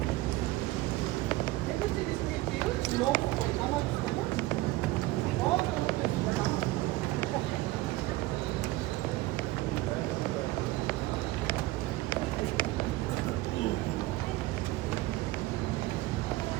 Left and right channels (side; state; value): left; quieter; 18.6 dB